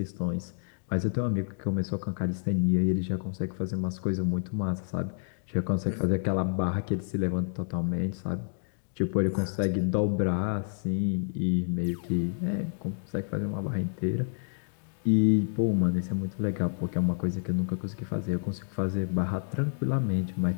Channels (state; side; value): silent; right; digital silence